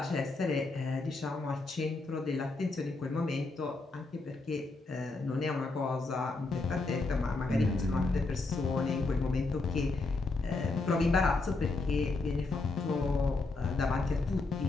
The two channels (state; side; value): quieter; right; 3.5 dB